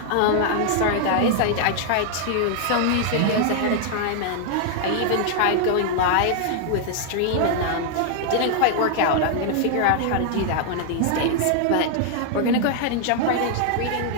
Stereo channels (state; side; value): different; both; correlation 0.00